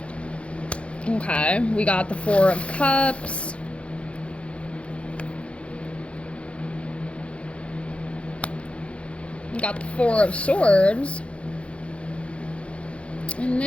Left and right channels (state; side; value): late; right; 0.061 ms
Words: Okay, we got the 4 of Cups. We got the 4 of Swords. And